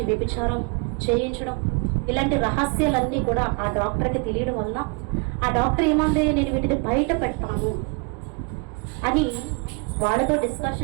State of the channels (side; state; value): left; quieter; 31.9 dB